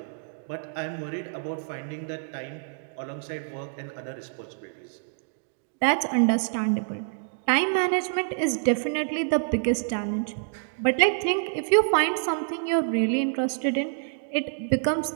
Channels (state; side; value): silent; left; digital silence